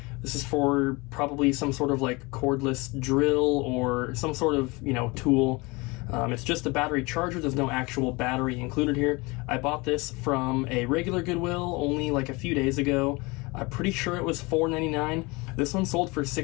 This is for probably some sort of like cordless drill or some sort of, you know, tool. It's just a battery charger. There's no actual battery included here. I bought this from a regular Goodwill only like a few days ago. I'm pretty sure it was $4.99. This one sold for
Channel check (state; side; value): quieter; right; 25.3 dB